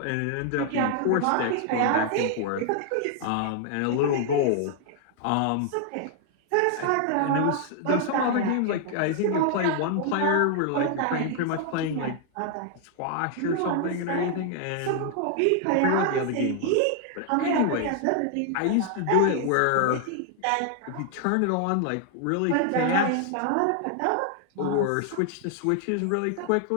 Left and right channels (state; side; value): different; both; correlation 0.00